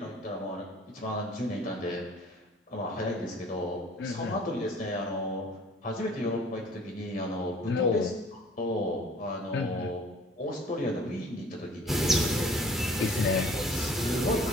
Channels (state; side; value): normal; both; correlation 0.52